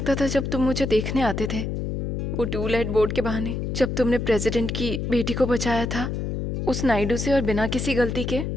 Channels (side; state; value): left; noise; hum, 2 dB below the sound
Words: था जब तुम मुझे देखने आते थे, वो टूलेट बोर्ड के बहाने। जब तुमने प्रेसिडेंट की बेटी को बचाया था उस नायडू से, और बिना किसी गलती के